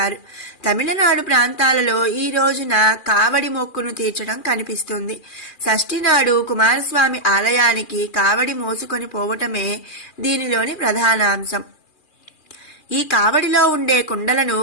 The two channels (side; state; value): right; late; 2.4 ms